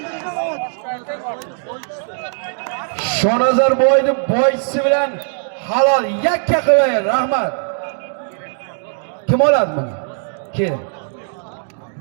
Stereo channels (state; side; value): silent; left; digital silence